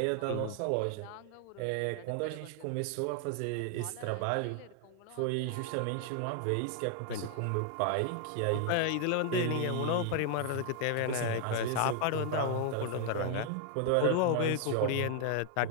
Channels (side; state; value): both; different; correlation 0.00